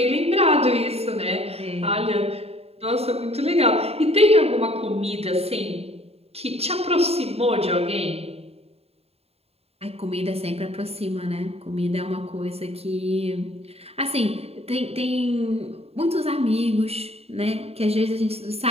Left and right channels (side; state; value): left; late; 0.29 ms